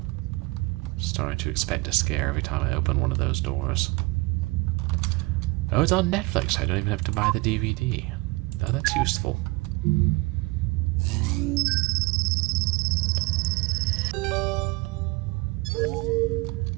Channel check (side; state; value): left; quieter; 24.1 dB